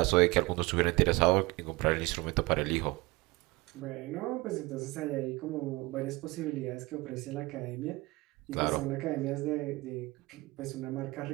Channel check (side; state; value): left; quieter; 22.6 dB